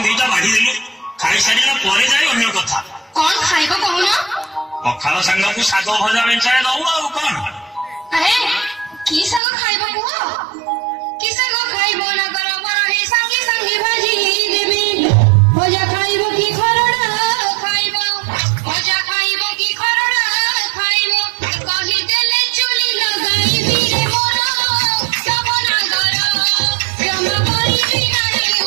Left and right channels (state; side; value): drops out; left; at 9.4 s